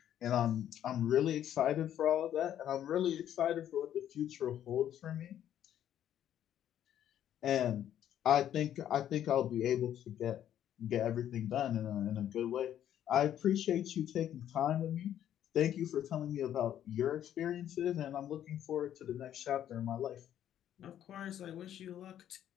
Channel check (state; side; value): quieter; right; 10.8 dB